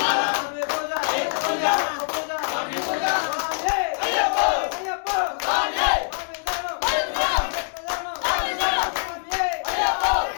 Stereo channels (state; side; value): silent; right; digital silence